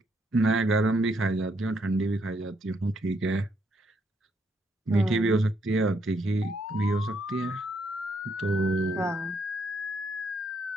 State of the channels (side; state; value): both; normal; correlation 0.73